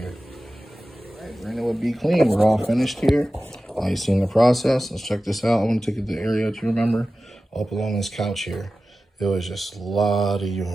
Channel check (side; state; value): both; normal; correlation 0.95